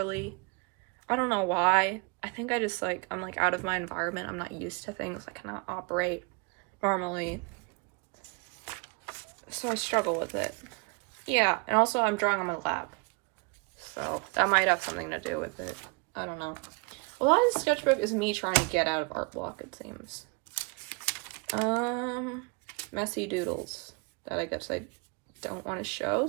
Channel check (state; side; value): quieter; left; 30.9 dB